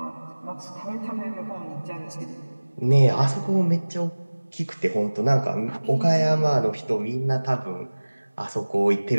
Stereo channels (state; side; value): inverted; both; correlation -1.00